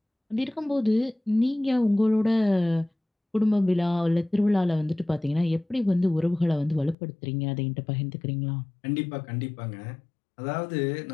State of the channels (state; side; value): drops out; right; at 7.0 s